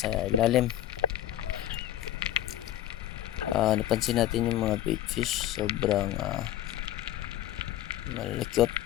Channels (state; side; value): quieter; right; 12.9 dB